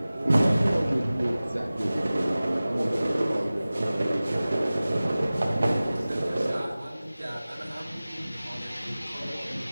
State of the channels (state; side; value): inverted; both; correlation -0.98